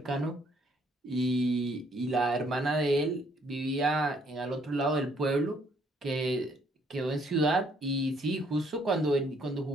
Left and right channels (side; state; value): both; normal; correlation 0.66